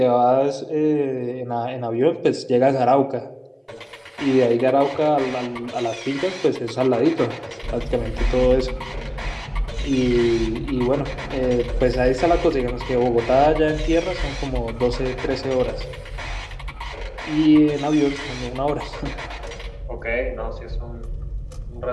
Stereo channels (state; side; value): identical; both; correlation 1.00